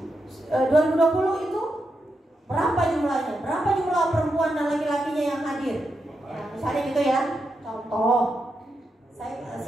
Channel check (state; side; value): normal; both; correlation 0.85